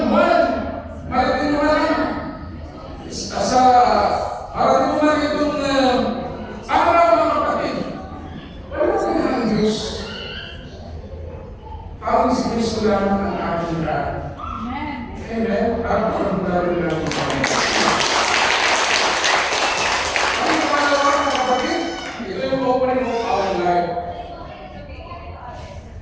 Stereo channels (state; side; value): identical; both; correlation 1.00